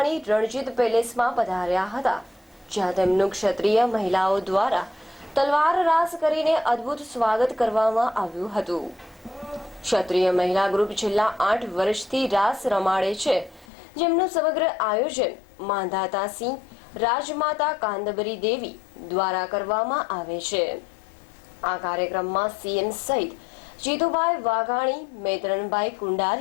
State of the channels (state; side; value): drops out; right; at 13.7 s